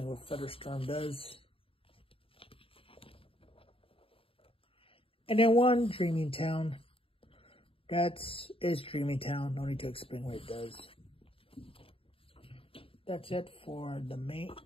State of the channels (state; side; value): late; right; 0.27 ms